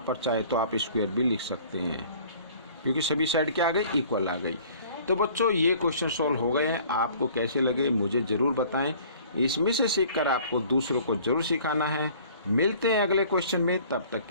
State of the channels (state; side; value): inverted; both; correlation -0.52